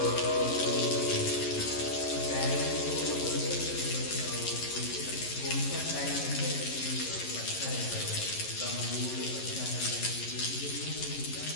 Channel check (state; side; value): late; right; 11 ms